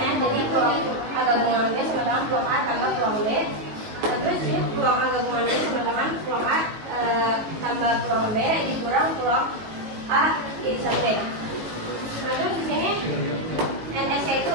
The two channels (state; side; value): late; left; 19 ms